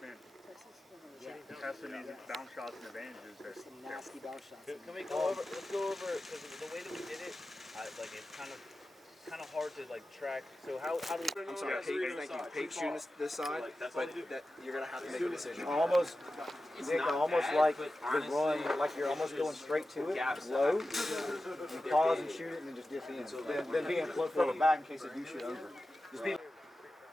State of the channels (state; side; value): normal; both; correlation 0.93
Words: testing these bounce shots and advantages. There's some nasty bounce shots. Can we go over, let's go over, because the way that we did it, it's kind of hard to track. So how do we? I'm sorry, Pate shooting this side, but that you're gonna have to make a decision. Almost like the run, like you're almost going straight to it, low. You pause and shoot it, and then just dip in. Then being further back in case they do shoot over. Just be.